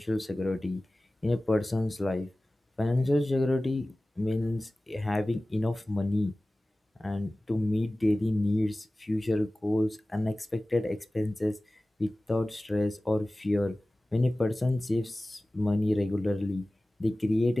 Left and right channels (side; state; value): both; normal; correlation 0.97